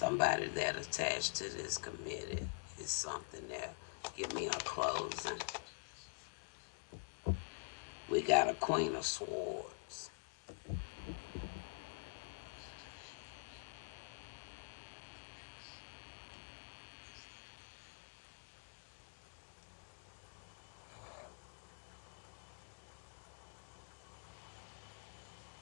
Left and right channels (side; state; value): right; silent; digital silence